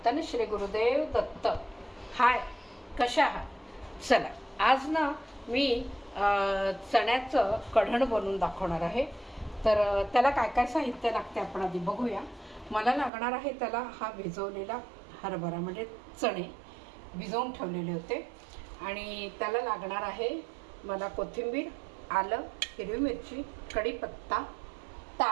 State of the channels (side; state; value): left; drops out; at 13.1 s